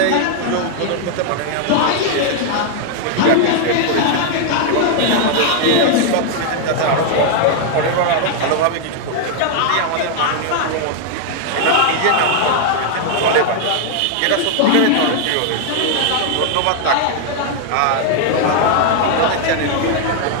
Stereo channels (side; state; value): both; different; correlation 0.00